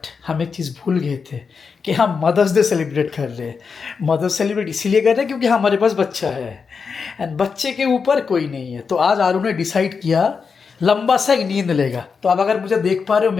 हम एक चीज़ भूल गए थे कि हम मदर्स डे सेलिब्रेट कर रहे हैं। मदर्स सेलिब्रेट इसीलिए कर रहे हैं क्योंकि हमारे पास बच्चा है एंड बच्चे के ऊपर कोई नहीं है। तो आज आरू ने डिसाइड किया लंबा सा एक नींद लेगा। तो अब अगर मुझे देख पा रहे हो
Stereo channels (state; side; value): quieter; right; 5.5 dB